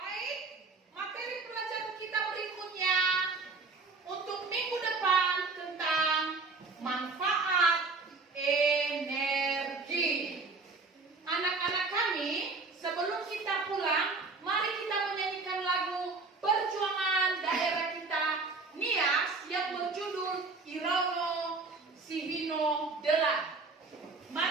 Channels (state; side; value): quieter; left; 4.0 dB